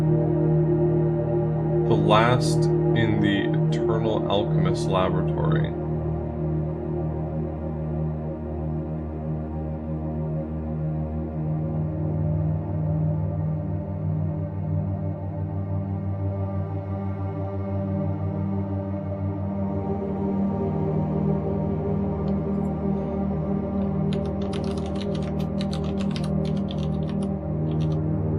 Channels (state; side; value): identical; both; correlation 1.00